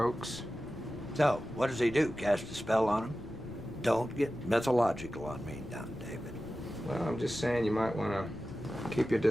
So, what does he do? Cast a spell on him? Don't get mythological on me now, David. Well, I'm just saying you might want to keep your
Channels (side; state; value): left; noise; rumble, 17 dB below the sound